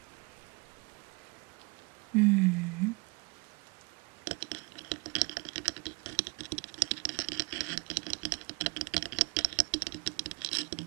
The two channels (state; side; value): quieter; left; 28.5 dB